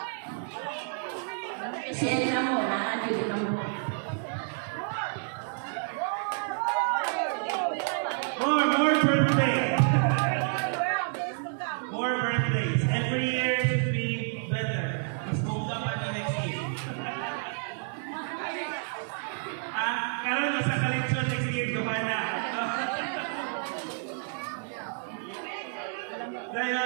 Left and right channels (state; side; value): silent; left; 56 dB below the other